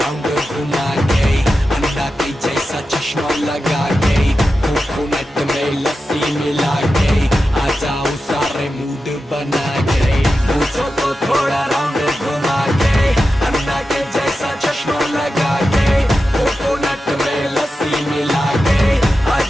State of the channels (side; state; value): both; normal; correlation 0.91